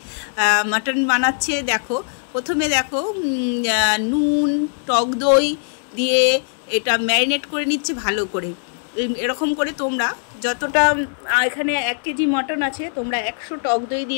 মাটন বানাচ্ছে। দেখো, প্রথমে দেখো নুন টক দই দিয়ে এটা ম্যারিনেট করে নিচ্ছে ভালো করে। এরকম করে তোমরা যতটা এখানে 1 কেজি মটন আছে, তোমরা 100 টক দই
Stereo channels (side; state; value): right; silent; digital silence